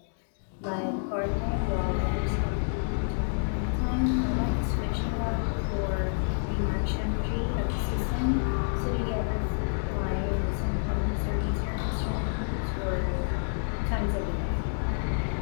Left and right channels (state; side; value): silent; right; digital silence